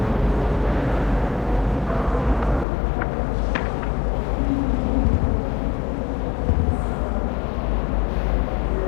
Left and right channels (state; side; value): drops out; right; at 2.7 s